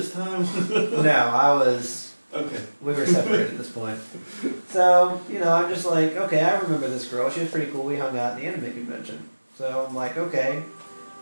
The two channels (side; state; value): both; inverted; correlation -1.00